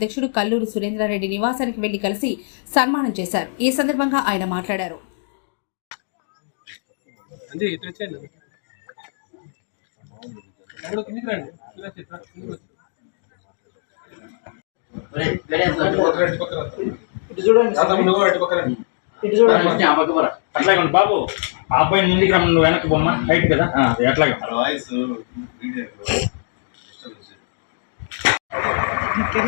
కల్లూరి సురేంద్రారెడ్డి నివాసానికి వెళ్లి కలిసి సన్మానం చేశారు. ఈ సందర్భంగా ఆయన మాట్లాడారు. బాబు ఆ అబ్బాయిని ముందుకు రమ్మ, నువ్వు వెనక్కి బొమ్మ హైట్ కదా ఎట్లాగా వాయిస్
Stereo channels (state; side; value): silent; right; digital silence